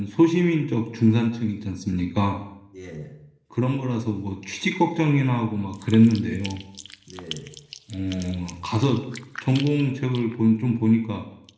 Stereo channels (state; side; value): identical; both; correlation 1.00